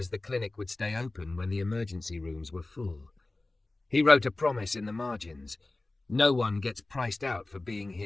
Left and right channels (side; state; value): right; quieter; 3.0 dB